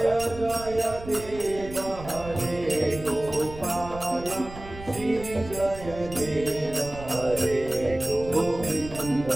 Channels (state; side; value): noise; right; rumble, 14 dB below the sound